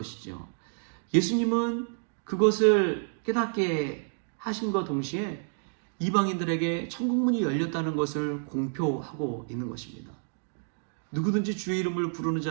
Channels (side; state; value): left; silent; digital silence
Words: 예수님은 그것을 깨닫게 하심과 동시에 이방인들에게 천국문이 열렸다는 것을 공표하고 있는 것입니다. 누구든지 주의 이름을 부르는